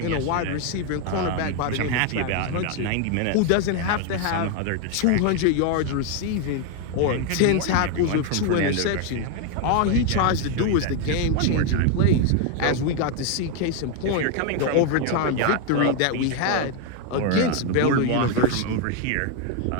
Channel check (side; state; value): both; different; correlation 0.01